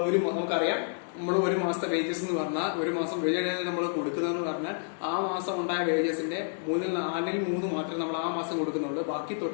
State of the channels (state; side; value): silent; right; digital silence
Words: നമ്മൾ ഒരു മാസത്തെ വേജസ് എന്ന് പറഞ്ഞാൽ, ഒരു മാസം വേജസ് നമ്മൾ കൊടുക്കുന്നതെന്ന് പറഞ്ഞാൽ ആ മാസം ഉണ്ടായ വേജസിന്റെ 4/3 മാത്രമേ നമ്മൾ ആ മാസം കൊടുക്കുന്നുള്ളൂ. ബാക്കി